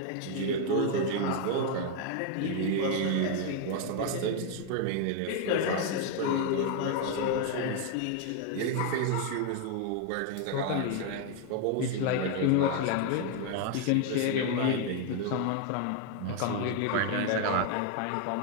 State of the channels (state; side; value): different; both; correlation 0.01